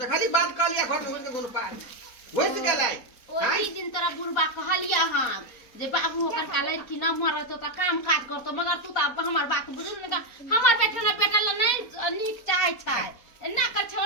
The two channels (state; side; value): late; right; 4.1 ms